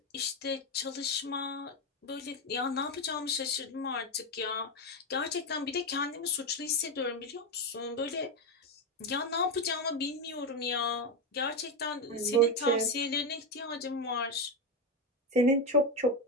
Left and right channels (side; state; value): both; normal; correlation 0.11